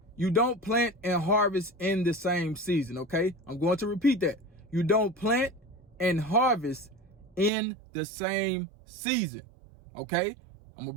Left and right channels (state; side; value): drops out; left; at 7.5 s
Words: you don't plant and harvest in the same season. Okay, I'm going to repeat that. You don't plant and harvest in the same season. Okay, I'm gonna